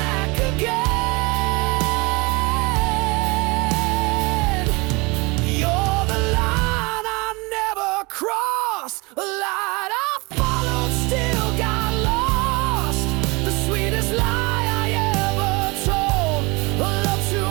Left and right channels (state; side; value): quieter; left; 26.3 dB